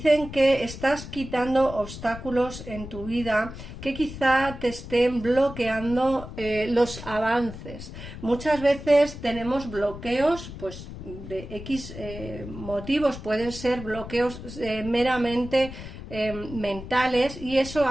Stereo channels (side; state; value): left; noise; rumble, 12 dB below the sound